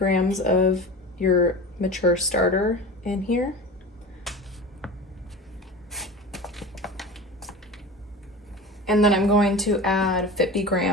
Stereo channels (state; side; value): normal; both; correlation 0.32